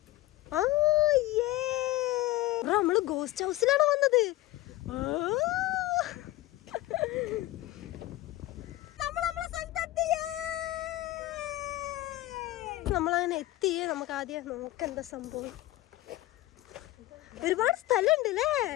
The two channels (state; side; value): quieter; right; 17.0 dB